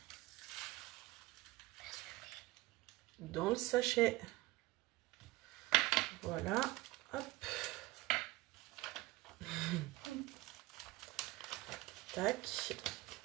Dans le sachet. Voilà. Hop. Tac.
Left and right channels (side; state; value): left; quieter; 19.6 dB